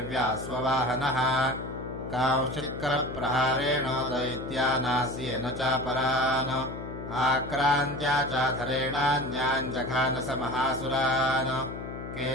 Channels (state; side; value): noise; left; hum, 9 dB below the sound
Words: स्ववाहनः कांश्चित्करप्रहारेण दैत्यानास्येन चापरान् आक्रान्त्या चाधरेणान्यान् जघानस महासुरान्